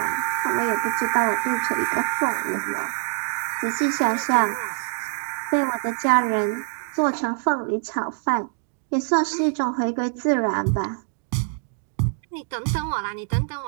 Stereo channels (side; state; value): left; silent; 62 dB below the other